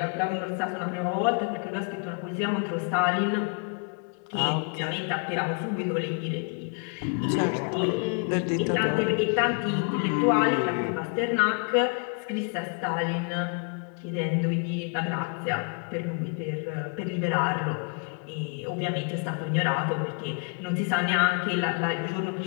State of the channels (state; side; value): quieter; right; 39.6 dB